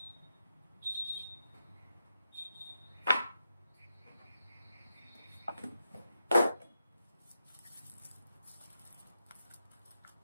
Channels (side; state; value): both; inverted; correlation -0.86